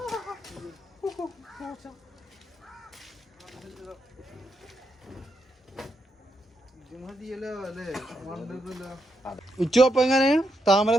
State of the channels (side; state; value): both; normal; correlation 0.81